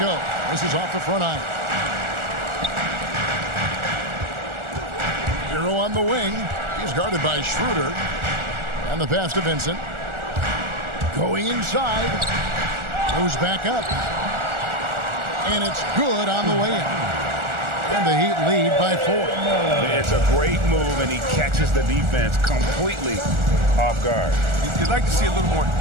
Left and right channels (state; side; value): late; left; 1.4 ms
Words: This is off the front iron. Hero on the wing. He's guarded by Schroeder. And the pass to Vincent. Going inside. Goes back up. And it's good on the way in. And the Heat lead by 4. It's a great move, and he catches the defense completely off guard. You'd like to see a little more